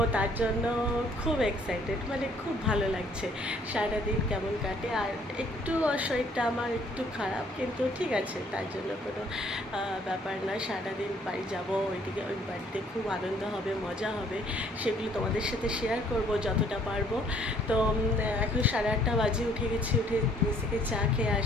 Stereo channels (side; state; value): both; normal; correlation 0.62